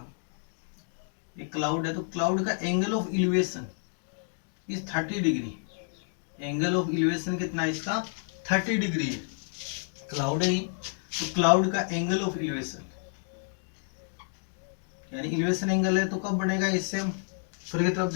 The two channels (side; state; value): right; silent; 58 dB below the other